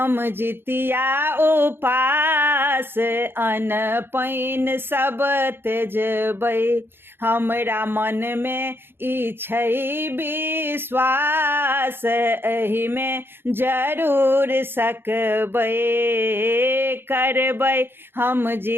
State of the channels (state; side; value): late; left; 0.10 ms